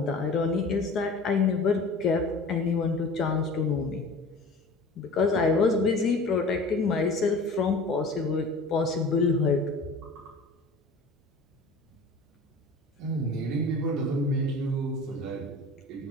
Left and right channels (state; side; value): quieter; right; 3.0 dB